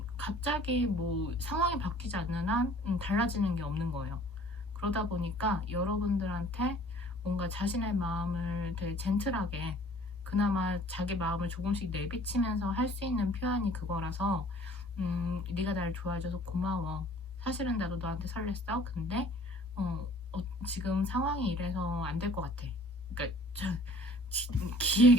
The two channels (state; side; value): normal; both; correlation 0.51